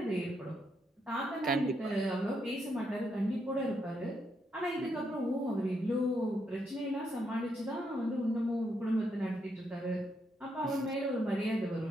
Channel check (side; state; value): both; normal; correlation 0.78